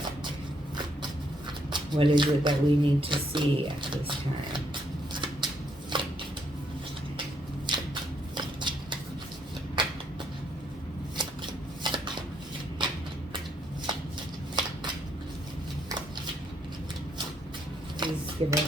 What is it that we need to see at this time? Please give us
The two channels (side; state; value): both; normal; correlation 0.73